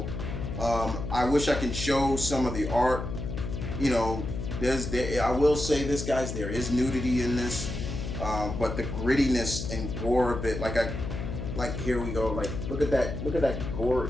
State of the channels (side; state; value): left; noise; hum, 5 dB below the sound